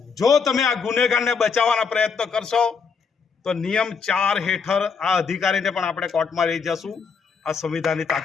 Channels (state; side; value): quieter; right; 5.6 dB